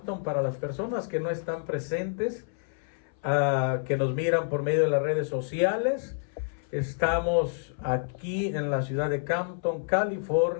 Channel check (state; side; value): silent; right; 57 dB below the other